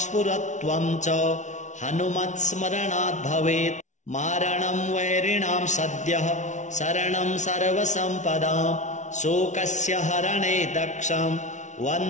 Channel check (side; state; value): right; late; 0.35 ms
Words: च हनुमत्स्मरणात् भवेत् मारणं वैरिणां सद्यः शरणं सर्वसम्पदां शोकस्य हरणे दक्षं